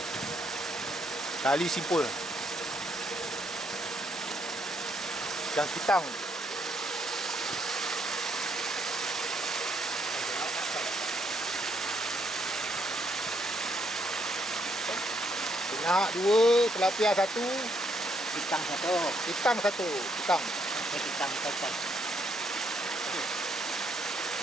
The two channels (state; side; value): normal; both; correlation 0.73